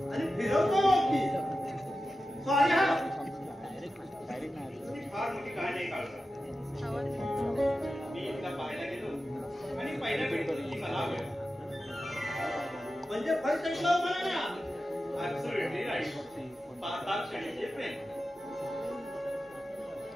आणि फिरवतो की सॉरी. हा फार मोठी कहाणी काढला. मी एकदा पाहायला गेलो आणि पहिल्या भेटीची मला आवड. म्हणजे फर्स्ट टाइम लव्ह म्हणा ना. Absolutely right. 5 क्षणीचे प्रेम.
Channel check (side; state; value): both; normal; correlation 0.93